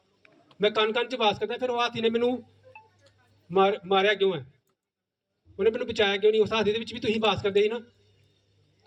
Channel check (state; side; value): identical; both; correlation 1.00